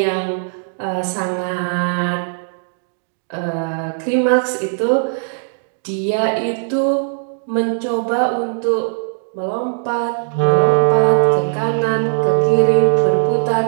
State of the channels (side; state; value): left; silent; 67 dB below the other